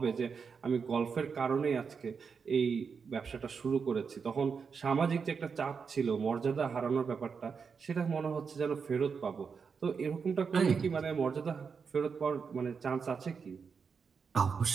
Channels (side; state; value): left; quieter; 5.8 dB